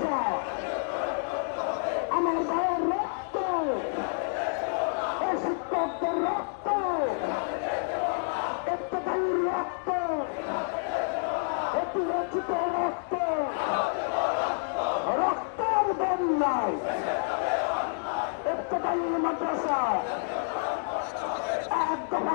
আমার ভাইয়ের রক্ত, শিক্ষকদের রক্ত, ইত্তেফাকের রক্ত, অতিরঞ্জিত রক্ত, রক্তের বন্যায় ইত্তেফাকের মাদ্রাসা এক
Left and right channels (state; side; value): silent; right; digital silence